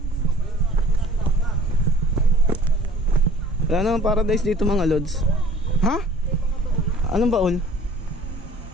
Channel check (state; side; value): normal; both; correlation 0.50